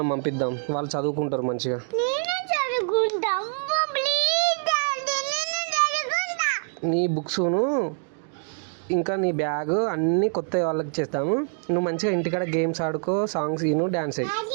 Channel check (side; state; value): left; silent; 57 dB below the other